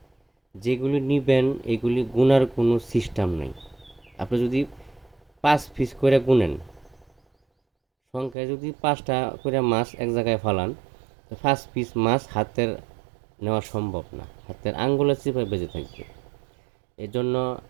যেগুলি নিবেন এগুলি গুনার কোনো সিস্টেম নেই। আপনি যদি 5 পিস করে গুনেন, সংখ্যায় যদি 5টা করে মাছ এক জায়গায় ফালান, তো 5 পিস মাছ হাতের নেওয়া সম্ভব না, হাতের আঙ্গুলের চিপায় বেঁচে থাকবে। এজন্য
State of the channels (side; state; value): left; drops out; at 8.3 s